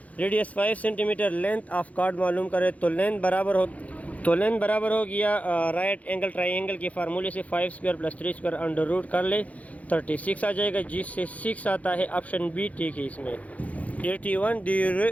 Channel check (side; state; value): right; late; 0.069 ms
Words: centimetre. Length of chord معلوم کرے تو لینتھ برابر ہو گیا رائٹ اینگل ٹرائی اینگل کے فارمولے سے 5 square plus 3 square under root کر لے، 36 آ جائے گا جس سے 6 آتا ہے۔ آپشن بی ٹھیک ہے اس میں۔ 81 The